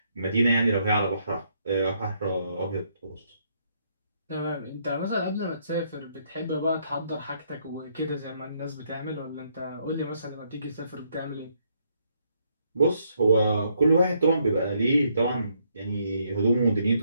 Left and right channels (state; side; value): inverted; both; correlation -0.72